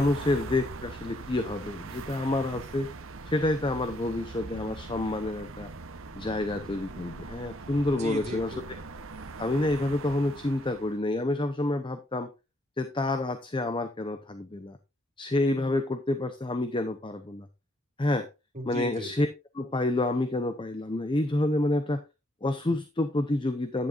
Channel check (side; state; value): both; normal; correlation 0.71